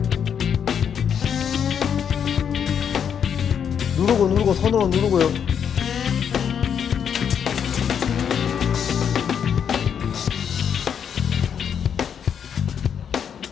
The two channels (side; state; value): right; quieter; 7.9 dB